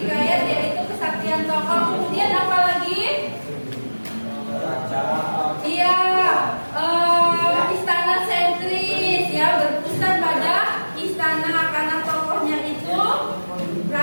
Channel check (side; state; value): both; inverted; correlation -1.00